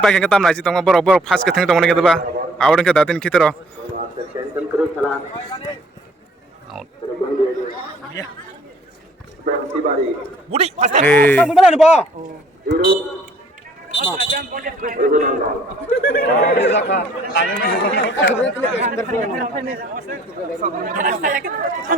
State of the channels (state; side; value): normal; both; correlation 0.58